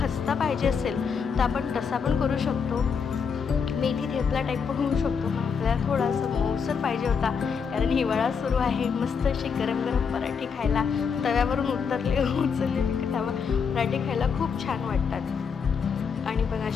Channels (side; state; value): right; quieter; 6.2 dB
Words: पाहिजे असेल तर आपण तसा पण करू शकतो, मेथी थेपला टाईप पण होऊ शकतो. मग आपल्याला थोडासा मऊसर पाहिजे होता कारण हिवाळा सुरू आहे. मस्त असे गरम गरम पराठे खायला, तव्यावरून उचललेले तवा पराठे खायला खूप छान वाटतात. आणि बघा